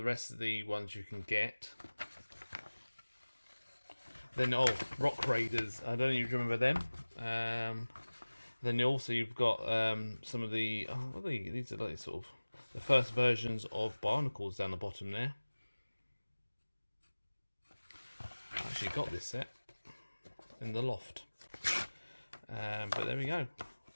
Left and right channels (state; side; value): inverted; both; correlation -1.00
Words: rest of the ones you can get. Then, Rock Raiders. I don't know if you remember them. Then also you've got some of the... what are these are like sort of the first versions of Barnacles down the bottom there. I actually got this set in the loft. But there we go.